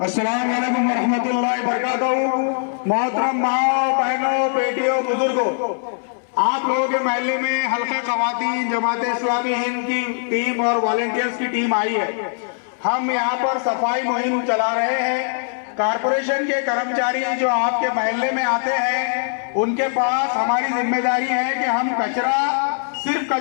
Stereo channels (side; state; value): right; silent; 62 dB below the other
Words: वालेकुम वरहमतुल्लाहि वबरकातुहू। मोहतरम माओ, बहनों, बेटियों, बुजुर्गों, आप लोगों के महल्ले में हल्का ख़वातीन जमात इस्लामी हिंद की टीम और वॉलंटियर्स की टीम आई है। हम यहाँ पर सफाई मुहिम चला रहे हैं। कारपोरेशन के कर्मचारी जो आपके महल्ले में आते हैं उनके पास हमारी जिम्मेदारी है कि हम कचरा सिर्फ